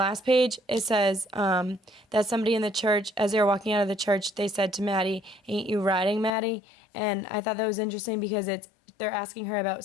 page, it says that somebody in the church, as they were walking out of the church, they said to Maddie, "Ain't you riding, Maddie?" And I thought that was interesting because they're asking her about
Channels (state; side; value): drops out; right; at 6.3 s